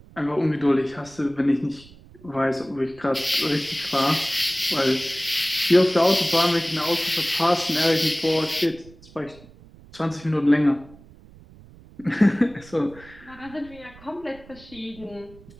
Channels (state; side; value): noise; right; rumble, 22 dB below the sound